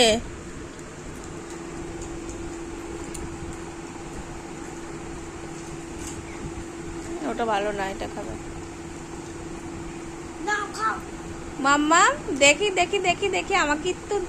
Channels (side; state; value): both; identical; correlation 1.00